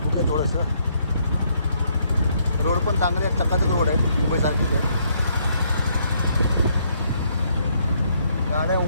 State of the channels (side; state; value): both; inverted; correlation -0.71